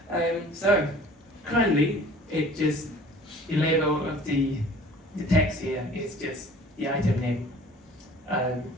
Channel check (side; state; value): both; normal; correlation 0.48